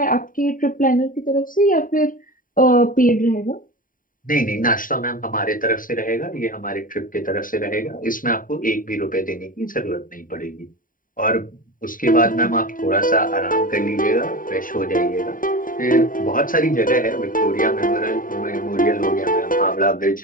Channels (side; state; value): right; late; 0.40 ms